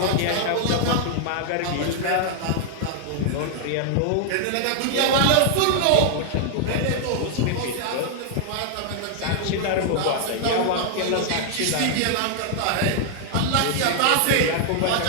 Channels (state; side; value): different; both; correlation 0.00